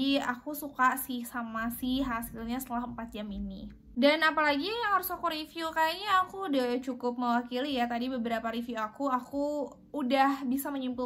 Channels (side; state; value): both; identical; correlation 1.00